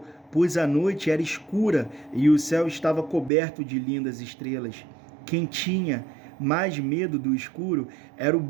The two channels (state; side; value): drops out; left; at 3.3 s